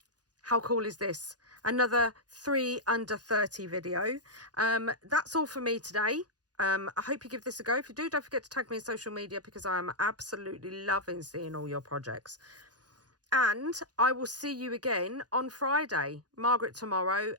how cool is this? Another 3 under 30 video. That's all for me today. I hope you give this a go. If you do, don't forget to tag me in social media, because I am absolutely loving seeing all your projects. And I will see you again on Friday. Margreth tomorrow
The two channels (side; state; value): left; late; 0.69 ms